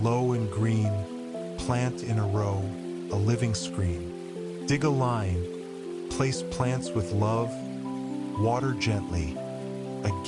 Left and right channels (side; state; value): both; identical; correlation 1.00